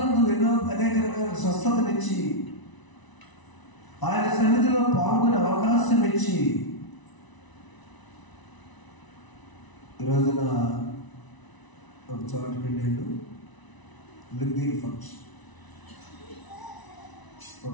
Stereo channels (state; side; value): late; right; 1.0 ms